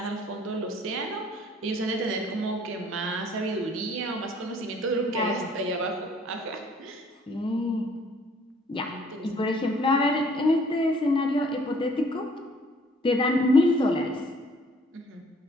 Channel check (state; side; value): normal; both; correlation 0.58